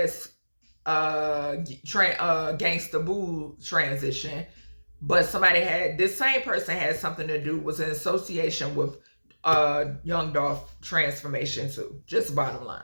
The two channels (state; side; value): inverted; both; correlation -1.00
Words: Gangsta Boo transition, but this same person had something to do, was in association with Young Dolph transformation too. Just bottom